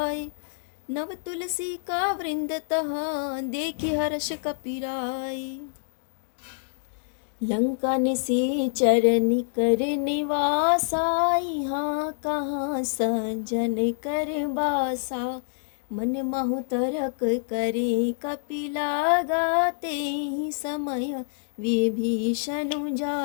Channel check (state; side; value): silent; right; digital silence